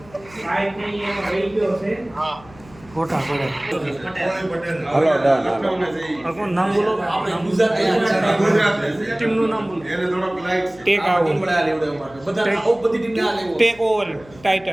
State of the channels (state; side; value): noise; left; hum, 23 dB below the sound